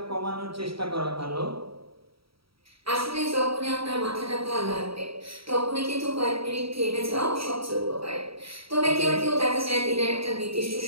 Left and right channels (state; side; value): late; left; 0.75 ms